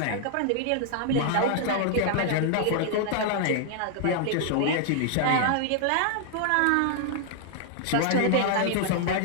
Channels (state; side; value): different; both; correlation -0.01